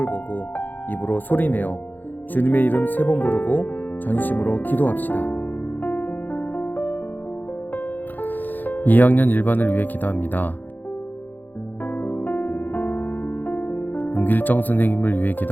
보고 입으로 소리내어 주님의 이름 3번 부르고 전심으로 기도합시다. 2학년 1반을 위해 기도합니다. 윤길정 선생님을 위해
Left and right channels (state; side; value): late; right; 0.086 ms